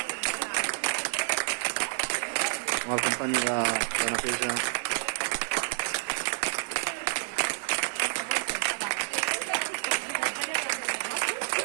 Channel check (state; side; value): silent; left; digital silence